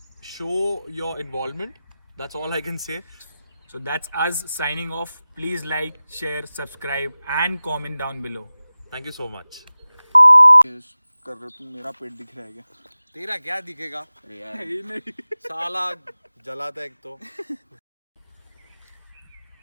show your involvement. That's all I can say. So that's us signing off. Please like, share, subscribe and comment down below. Thank you so much. कर रहे तुम, मेरा पेट दिख रहा है क्या? तेरा क्या दिखेगा? नहीं साला जलाता है एक तो.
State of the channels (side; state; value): both; inverted; correlation -0.96